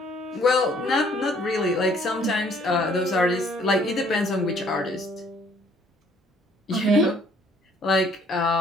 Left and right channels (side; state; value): both; normal; correlation 0.61